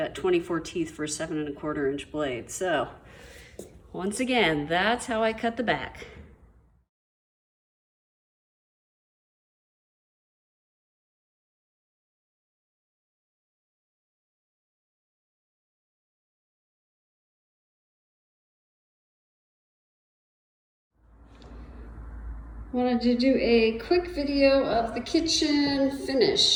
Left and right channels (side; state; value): both; identical; correlation 1.00